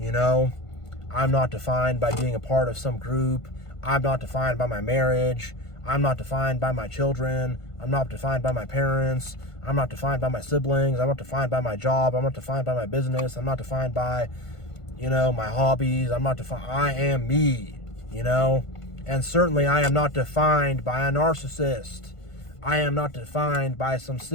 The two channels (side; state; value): right; late; 1.5 ms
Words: know. I'm not defined by being a part of some group. I'm not defined by my marriage. I'm not defined by my children. I'm not defined by my parents. I'm not defined by my siblings. I'm not defined by my job. I'm not defined by my business. I'm not defined by, you know, my hobbies. I'm not defined. I am me, you know. And certainly I am not defined by a narcissist. I am not defined by some